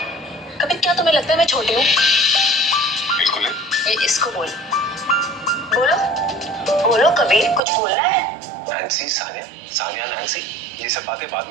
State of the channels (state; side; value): drops out; left; at 7.6 s